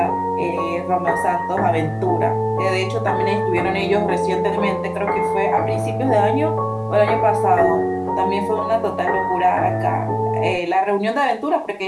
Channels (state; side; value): identical; both; correlation 1.00